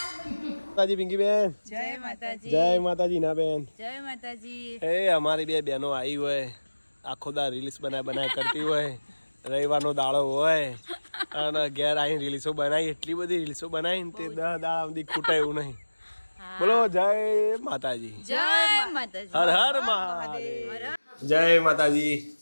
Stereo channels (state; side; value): inverted; both; correlation -1.00